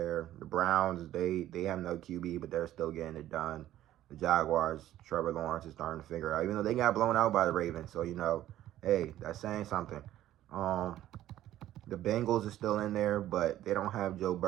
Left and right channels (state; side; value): quieter; left; 13.3 dB